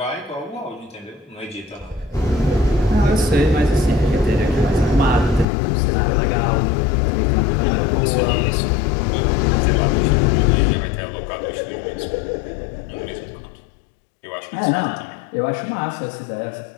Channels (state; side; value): drops out; right; at 5.5 s